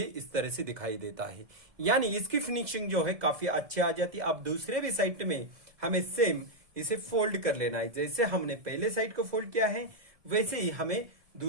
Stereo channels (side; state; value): left; late; 2.0 ms